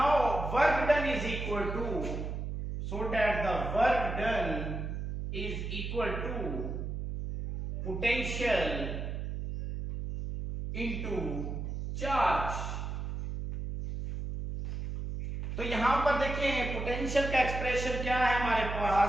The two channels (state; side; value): noise; right; hum, 4 dB below the sound